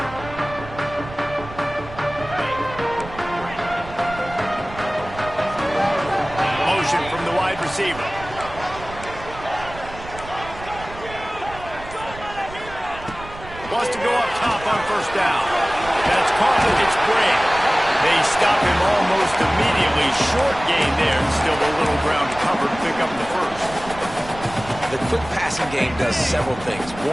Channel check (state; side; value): noise; right; rumble, 15 dB below the sound